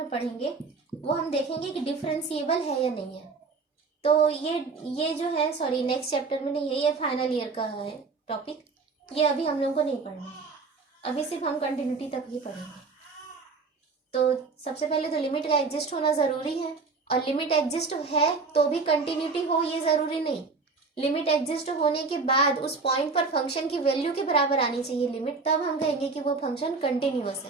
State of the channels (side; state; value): left; quieter; 4.3 dB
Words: पढ़ेंगे, वो हम देखेंगे कि डिफरेंशिएबल है या नहीं है। तो ये जो है, सॉरी नेक्स्ट चैप्टर में नहीं है, ये फाइनल ईयर का है टॉपिक, ये अभी हम लोग को नहीं पढ़ना है, अभी सिर्फ हम कंटिन्यूटी तक ही पढ़ेंगे। तो सबसे पहले तो लिमिट का एग्जिस्ट होना ज़रूरी है, और लिमिट एग्जिस्ट है तो भी कंटिन्यूटी हो ये ज़रूरी नहीं। लिमिट एग्जिस्ट होने के बाद उस पॉइंट पर फंक्शन की वैल्यू के बराबर आनी चाहिए लिमिट, तब हम कहेंगे कि वो फंक्शन कंटिन्यूअस